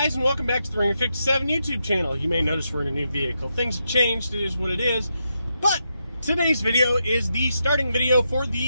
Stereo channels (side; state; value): both; inverted; correlation -0.84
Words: and welcome back to the Ringer 57 YouTube channel. You may notice we're in a new vehicle. Things have changed, it is what it is. But today's video is the starting video for